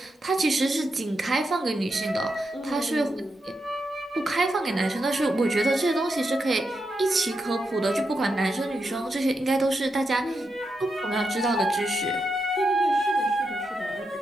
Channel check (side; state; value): both; normal; correlation 0.85